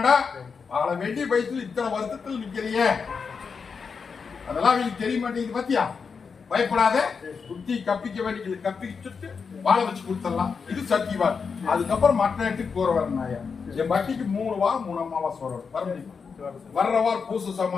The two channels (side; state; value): right; quieter; 5.6 dB